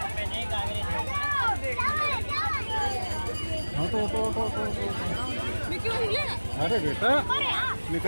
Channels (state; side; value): inverted; both; correlation -1.00